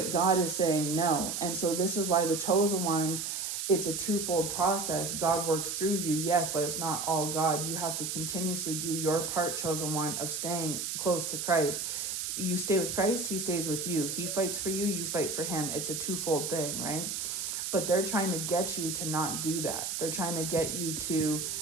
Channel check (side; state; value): right; noise; hiss, 3 dB below the sound